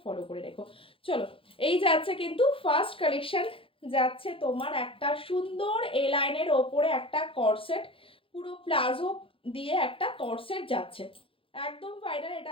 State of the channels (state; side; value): late; right; 0.26 ms